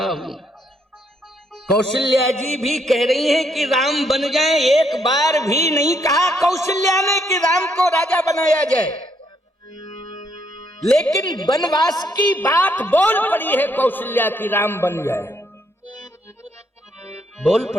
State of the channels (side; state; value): both; normal; correlation 0.72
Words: हूं। कौशल्या जी भी कह रही हैं कि राम बन जाए। एक बार भी नहीं कहा कौशल्या ने कि राम को राजा बनाया जाए, लेकिन वनवास की बात बोल पड़ी है कौशल्या की, राम बन जाए, बोल